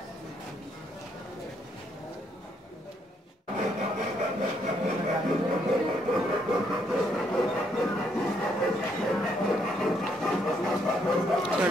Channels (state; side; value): normal; both; correlation 0.73